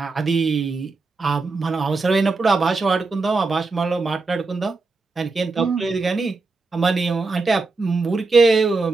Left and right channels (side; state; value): left; quieter; 3.9 dB